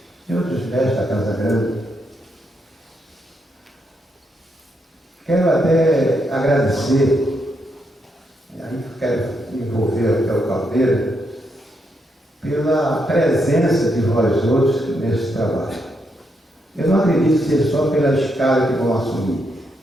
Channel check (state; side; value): normal; both; correlation 0.80